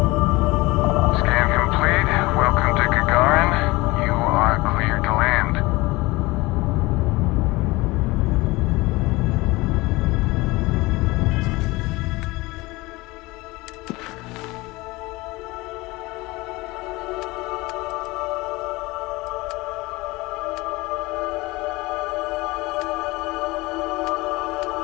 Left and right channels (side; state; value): right; quieter; 21.8 dB